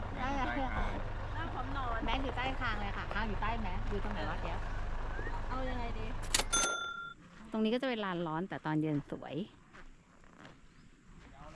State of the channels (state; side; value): identical; both; correlation 1.00